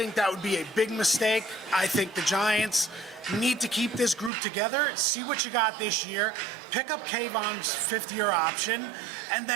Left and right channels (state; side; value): drops out; left; at 4.3 s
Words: that would be a big mistake. I think the Giants need to keep this group together, see what you got this year, pick up Kayvon's fifth-year option, and